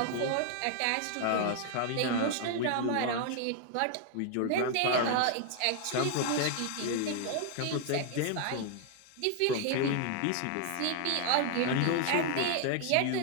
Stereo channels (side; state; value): both; different; correlation 0.00